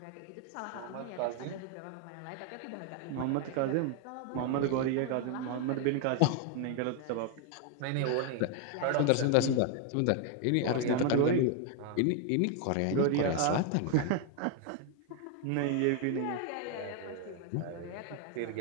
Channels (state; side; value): different; both; correlation 0.00